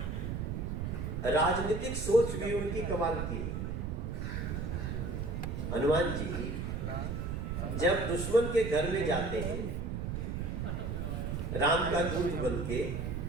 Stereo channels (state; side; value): noise; right; rumble, 2 dB below the sound